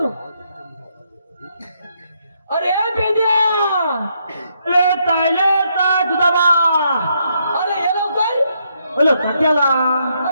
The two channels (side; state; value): both; inverted; correlation -0.76